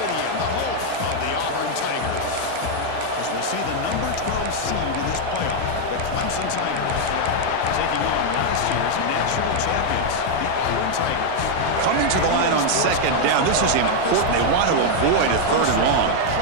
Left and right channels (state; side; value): different; both; correlation 0.00